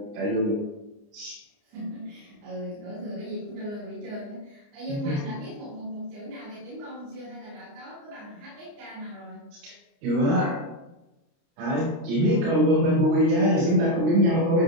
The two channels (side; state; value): left; late; 29 ms